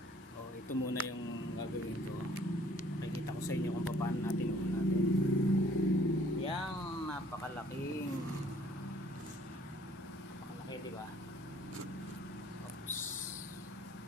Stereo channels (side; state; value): both; normal; correlation 0.58